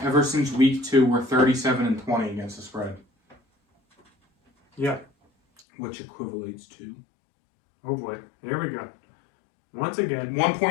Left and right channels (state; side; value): drops out; right; at 5.6 s